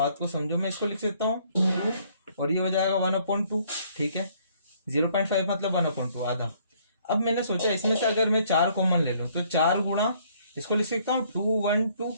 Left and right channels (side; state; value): both; inverted; correlation -0.64